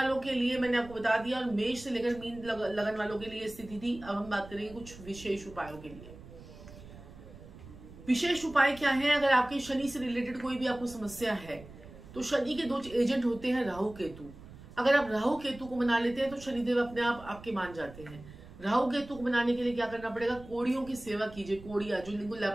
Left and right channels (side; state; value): right; noise; rumble, 17 dB below the sound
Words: के लिए मैंने आपको बता दिया और मेष से लेकर मीन लगन वालों के लिए स्थिति थी। अब हम बात करेंगे कुछ विशेष उपायों के लिए। विशेष उपाय क्या है? अगर आपके शनि से रिलेटेड कोई भी आपको समस्या है तो शनि के 2 एजेंट होते हैं, राहु केतु। अगर आप राहु केतु को मना लेते हैं तो शनिदेव अपने आप आपके मान जाते हैं। राहु केतु को बनाने के लिए क्या करना पड़ेगा? कोड़ियों की सेवा कीजिए। कोड़िया जो जिनको